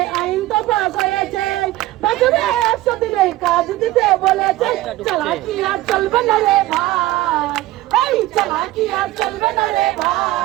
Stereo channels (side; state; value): left; quieter; 16.9 dB